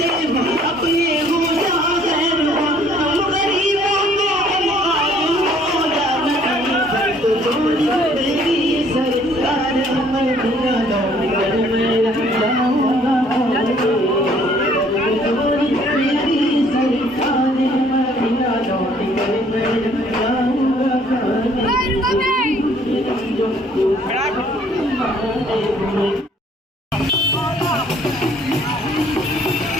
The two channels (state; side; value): normal; both; correlation 0.60